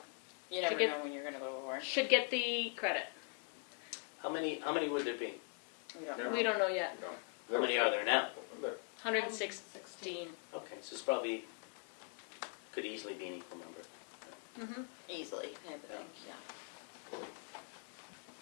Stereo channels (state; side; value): quieter; right; 36.1 dB